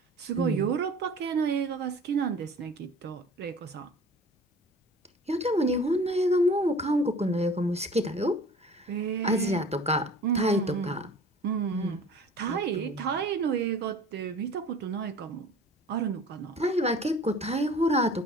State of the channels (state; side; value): normal; both; correlation 0.45